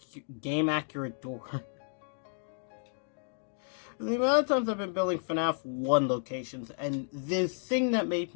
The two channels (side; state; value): right; silent; digital silence